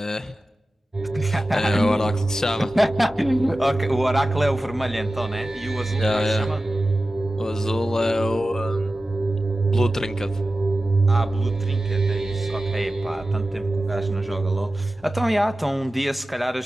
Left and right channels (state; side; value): normal; both; correlation 0.95